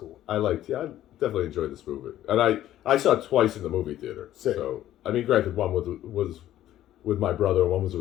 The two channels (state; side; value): quieter; right; 12.9 dB